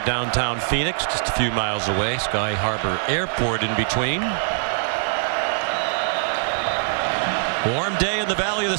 downtown Phoenix, just a few miles away. Sky Harbor Airport in between. Warm day in the Valley of the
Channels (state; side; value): silent; left; digital silence